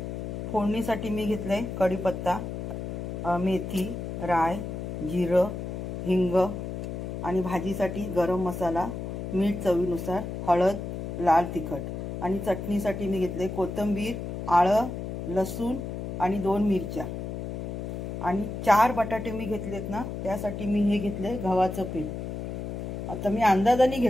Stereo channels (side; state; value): left; noise; hum, 5 dB below the sound